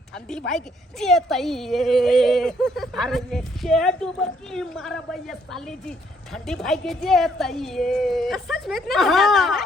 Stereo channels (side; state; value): both; normal; correlation 0.68